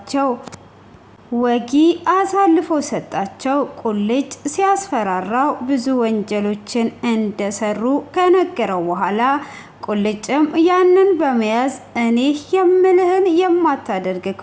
ወጊ አሳልፎ ሰጣቸው። ቁልጭ ሲያስፈራራው ብዙ ወንጀሎችን እንደሰሩ ከነገረው በኋላ ቁልጭም ያንን በመያዝ እኔ የምልህን የማታደርግ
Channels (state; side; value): identical; both; correlation 1.00